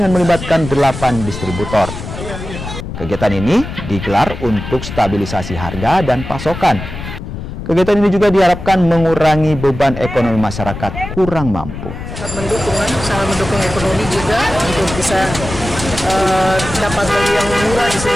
melibatkan 8 distributor. Kegiatan ini digelar untuk stabilisasi harga dan pasokan. Kegiatan ini juga diharapkan mengurangi beban ekonomi masyarakat kurang mampu. Sangat mendukung ekonomi juga untuk bisa dapat beli yang murah di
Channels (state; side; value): noise; left; rumble, 9 dB below the sound